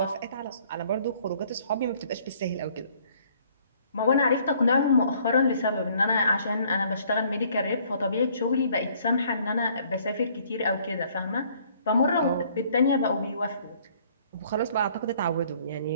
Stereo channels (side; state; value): both; inverted; correlation -0.60